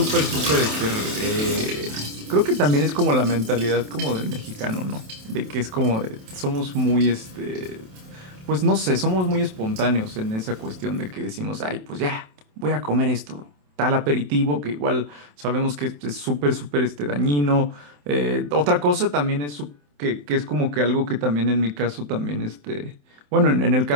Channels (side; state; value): left; late; 27 ms